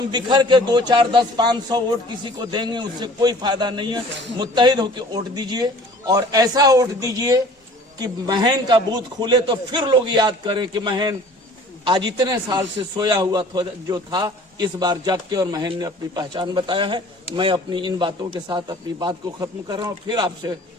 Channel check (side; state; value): both; normal; correlation 0.48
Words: बिखर के 2, 4, 10, 500 वोट किसी को देंगे, उससे कोई फायदा नहीं है। मुत्तहिद होकर वोट दीजिए और ऐसा वोट दीजिए कि महन का बूथ खुले तो फिर लोग याद करें कि महन आज इतने साल से सोया हुआ जो था, इस बार जाग के और महन ने अपनी पहचान बताया है। मैं अपनी इन बातों के साथ अपनी बात को खत्म कर रहा हूँ। फिर